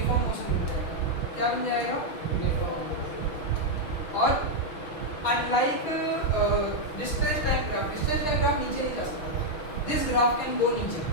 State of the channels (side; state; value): right; late; 6.3 ms